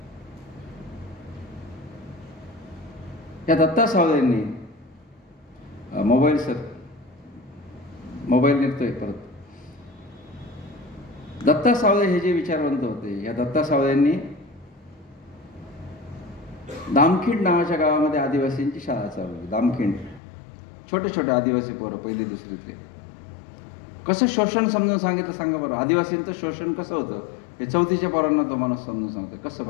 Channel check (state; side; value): drops out; right; at 20.2 s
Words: या दत्ता सावळेंनी मोबाईल निघतोय परत. दत्ता सावळे हे जे विचारवंत होते, या दत्ता सावळेंनी दामखिंड नावाच्या गावामध्ये आदिवासींची शाळा चालवली. दामखिंड, छोटे आदिवासी पोरं 1ली-2रीतले. कसं शोषण समजून सांगितलं सांगा बरं. आदिवासींचं शोषण कसं होतं हे 4थीच्या पोरांना तो माणूस समजून सांगतो. कसं